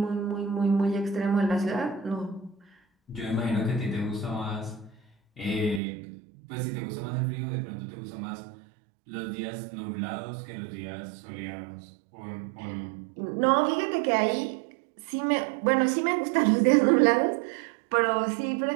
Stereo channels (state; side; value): drops out; left; at 5.8 s